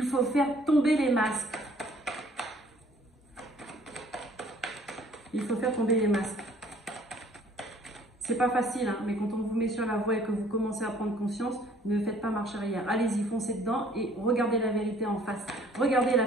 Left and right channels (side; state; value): both; normal; correlation 0.57